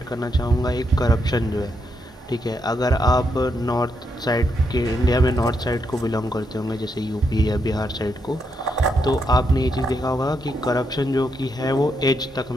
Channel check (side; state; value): both; normal; correlation 0.80